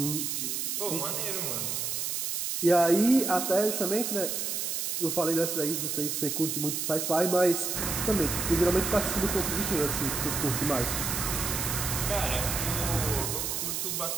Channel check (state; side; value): noise; right; hiss, 1 dB below the sound